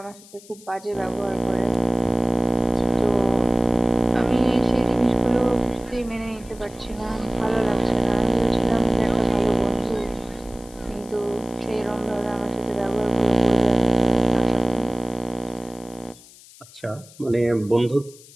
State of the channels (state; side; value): noise; left; hiss, 22 dB below the sound